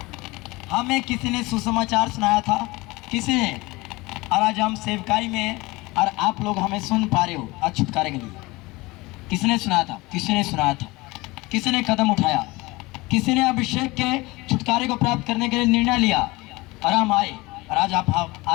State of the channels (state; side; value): quieter; right; 22.3 dB